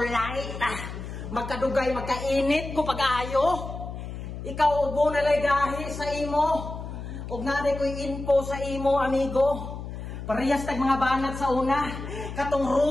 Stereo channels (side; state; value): left; noise; hum, 9 dB below the sound